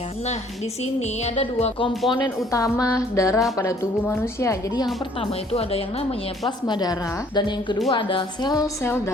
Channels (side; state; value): both; normal; correlation 0.59